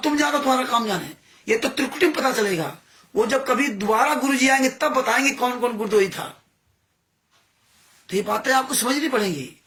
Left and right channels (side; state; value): both; identical; correlation 1.00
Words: तुम जानो तुम्हारा काम जाने। ये तो त्रिकुटी में पता चलेगा। वो जब कभी दोबारा गुरु जी आएंगे तब बताएंगे कौन कौन गुरदोही था। तो ये बातें आपको समझनी पड़ेंगी